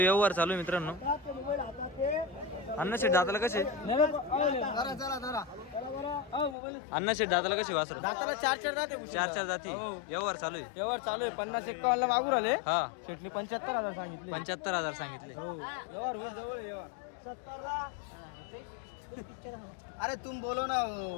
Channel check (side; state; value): right; drops out; at 6.6 s